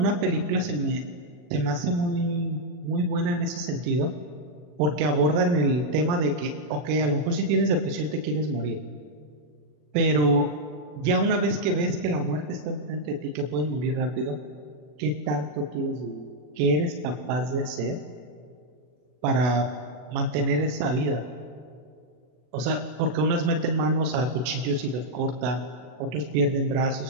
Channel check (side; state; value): left; late; 40 ms